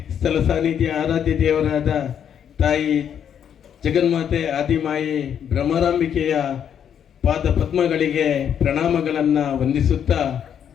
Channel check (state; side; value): quieter; right; 8.7 dB